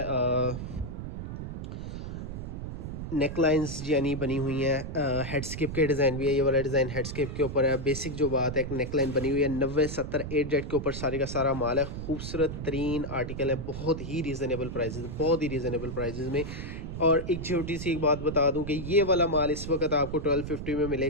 नेक लाइन्स यानी बनी हुई हैं, हेडस्केप के डिज़ाइन भी है। ये वाला डिज़ाइन हेडस्केप के ऊपर है। बेसिक जो बात है, एक नेक लाइन बनी हुई है 90-70 8 जेट के ऊपर सारे का सारा माल है। खूबसूरत तरीन आर्टिकल है, बहुत ही रीज़नेबल प्राइजेज़, बहुत ही रीज़नेबल प्राइजेज़ में। और एक छोटी सी एक बात बता दूं कि ये वाला माल इस वक्त आपको 1250 में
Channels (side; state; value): right; noise; rumble, 7 dB below the sound